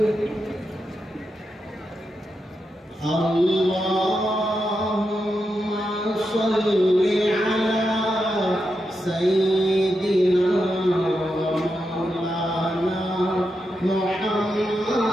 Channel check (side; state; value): both; normal; correlation 0.86